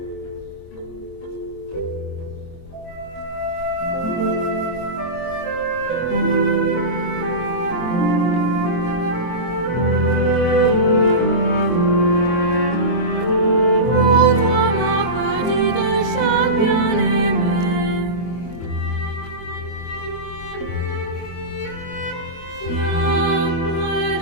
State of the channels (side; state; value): right; late; 24 ms